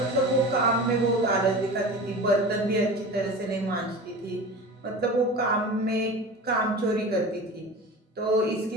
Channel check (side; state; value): both; normal; correlation 0.33